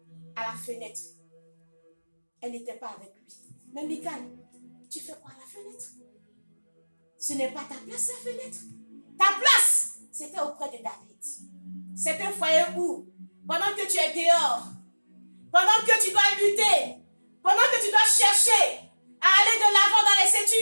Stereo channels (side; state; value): both; inverted; correlation -1.00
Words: À la fenêtre. Elle n'était pas avec lui. Mais Michal, tu fais quoi à la fenêtre? Ce n'est pas ta place, la fenêtre. Ta place, c'était auprès de David. C'est un foyer où, pendant que tu es dehors, pendant que tu dois lutter, pendant que tu dois chercher à aller de l'avant dans les